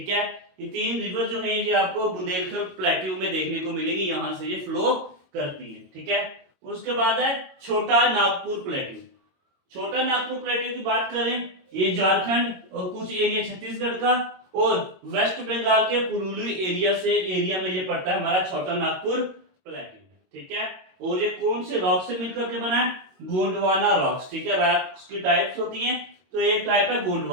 है, ये तीन रिवर जो हैं ये आपको बुंदेलखंड प्लेट्यू में देखने को मिलेगी, यहां से ये फ्लो करती है। ठीक है, उसके बाद है छोटा नागपुर प्लेट्यू। छोटा नागपुर प्लेट्यू की बात करें, ये झारखंड और कुछ एरिया छत्तीसगढ़ का और वेस्ट बंगाल के पुरुलिया एरिया में ये पड़ता है हमारा छोटा नागपुर प्लेट्यू। ठीक है, और ये कौन से रॉक से मिलकर के बना है? गोंडवाना रॉक्स। ठीक है, रॉक्स की टाइप्स होती हैं, तो एक टाइप है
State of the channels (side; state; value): left; late; 22 ms